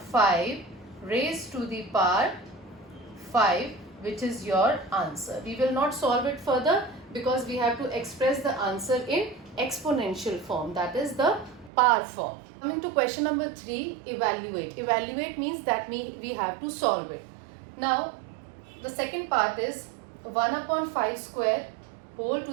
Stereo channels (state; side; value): drops out; left; at 11.7 s